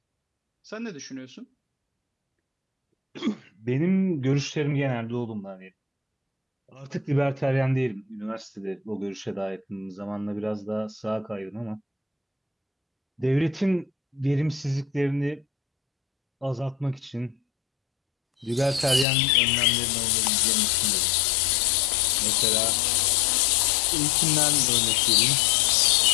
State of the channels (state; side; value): drops out; right; at 19.1 s